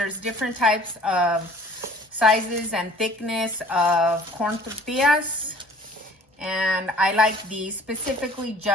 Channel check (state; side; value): normal; both; correlation 0.51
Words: different types of sizes and thickness of corn tortillas, and I like these specifically